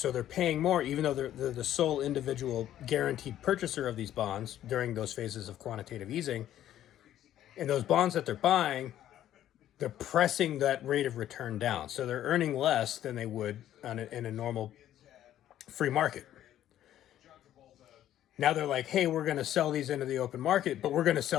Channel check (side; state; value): right; quieter; 12.0 dB